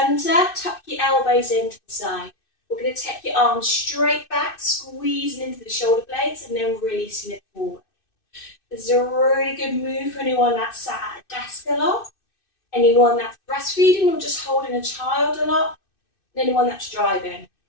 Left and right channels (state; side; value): late; right; 2.6 ms